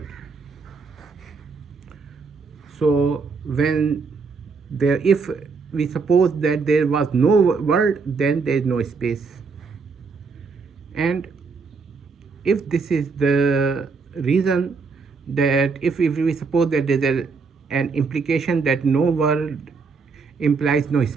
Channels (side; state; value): left; quieter; 4.7 dB